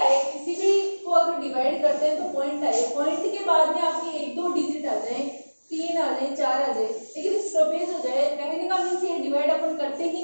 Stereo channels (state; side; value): inverted; both; correlation -1.00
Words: किसी भी को अगर डिवाइड करते हैं तो पॉइंट आए, पॉइंट के बाद में आपकी 1-2 डिजिट आ जाए, 3 आ जाए, 4 आ जाए, लेकिन स्टॉपेज हो जाए, कहने का मीन्स ये डिवाइड अपन करते ही